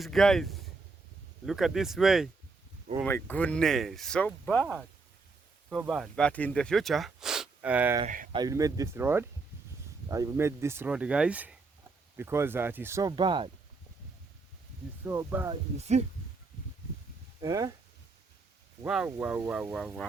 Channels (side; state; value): left; quieter; 4.0 dB